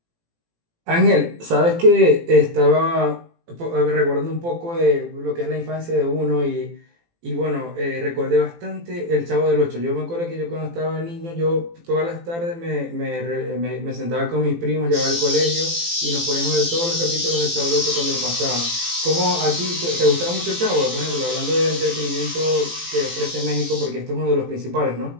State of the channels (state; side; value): late; left; 18 ms